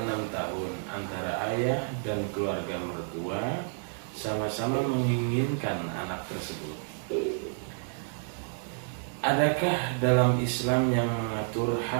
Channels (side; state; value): left; silent; 58 dB below the other